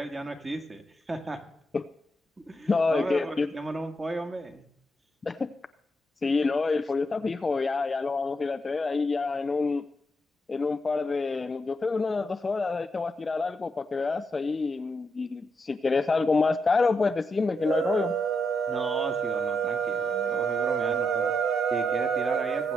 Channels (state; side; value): normal; both; correlation 0.81